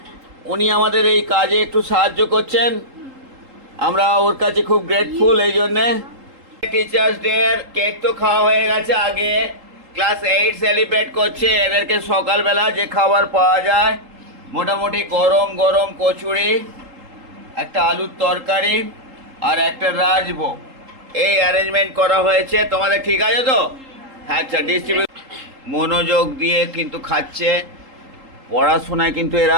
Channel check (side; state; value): left; late; 3.8 ms